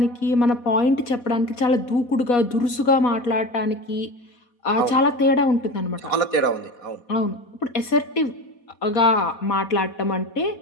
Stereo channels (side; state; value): right; late; 4.1 ms